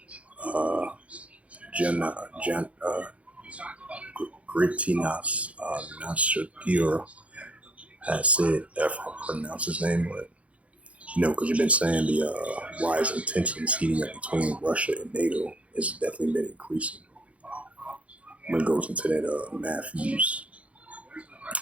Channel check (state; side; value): late; left; 0.064 ms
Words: Gritinas Nausėda has said, if I pronounce his name, but because you've been saying the rising tensions heating up between Russia and NATO has definitely been increasing. When it goes into that Matthew's,